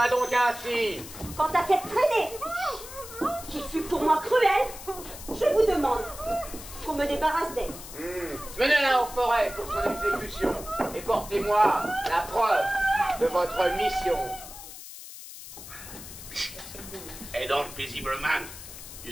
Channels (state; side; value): noise; left; hiss, 13 dB below the sound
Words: donc ainsi. Quant à cette traînée, qui fut pour moi cruelle, je vous demande qu'on me débarrasse d'elle. Menez-la en forêt pour son exécution et portez-moi la preuve de votre mission. Elle dort paisiblement